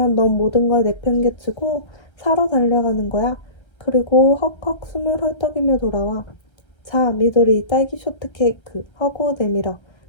넌 모든 걸 내팽개치고 사러 달려가는 거야. 그리고 헉헉 숨을 헐떡이며 돌아와. 자, 미도리 딸기 쇼트케이크 하고 내밀어.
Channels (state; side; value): late; right; 1.3 ms